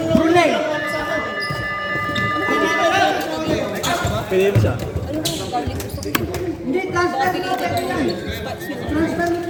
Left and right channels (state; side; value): identical; both; correlation 1.00